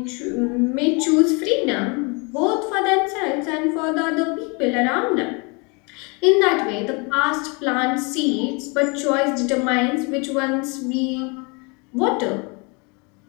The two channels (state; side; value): quieter; right; 31.2 dB